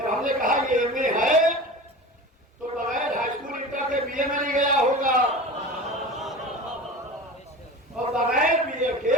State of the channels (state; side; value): normal; both; correlation 0.34